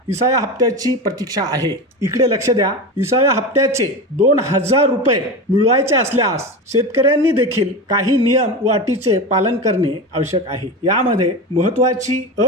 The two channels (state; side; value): normal; both; correlation 0.23